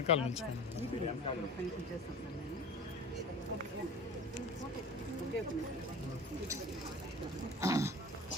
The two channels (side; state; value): both; normal; correlation 0.37